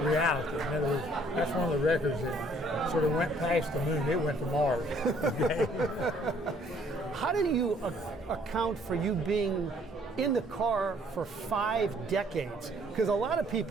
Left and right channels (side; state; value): both; normal; correlation 0.62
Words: reality. In other words, that's one of the records that sort of went past the moon. It went to Mars. How did you account for you being in the car for 5 decades? Because a lot of